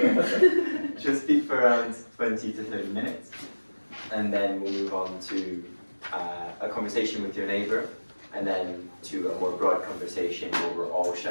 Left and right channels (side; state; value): both; inverted; correlation -1.00